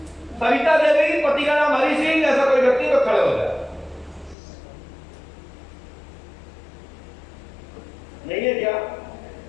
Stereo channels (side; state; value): right; drops out; at 4.4 s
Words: सविता देवी पति का नाम हरि सिंह, ऐसा कोई व्यक्ति तो खड़े हो जाए। नहीं है क्या?